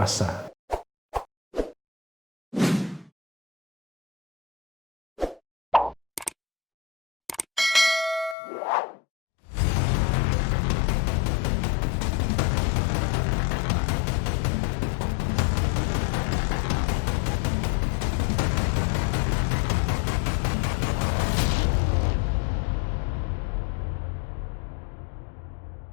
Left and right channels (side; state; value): right; drops out; at 8.3 s